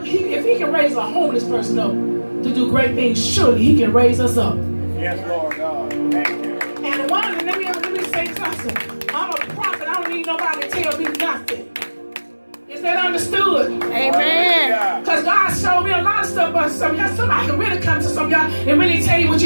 If he can raise a homeless person up to do great things, surely he can raise us up. Yes, Lord God. Thank you. And let me say something. I'm a prophet. I don't need nobody to tell me nothing. Is that understood? Amen. Because God showed me a lot of stuff, but somebody can really come to some of y'all and really tell you what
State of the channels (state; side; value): inverted; both; correlation -1.00